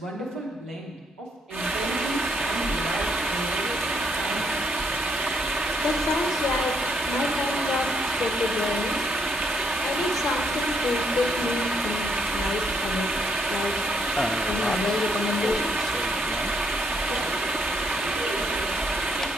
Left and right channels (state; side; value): normal; both; correlation 0.73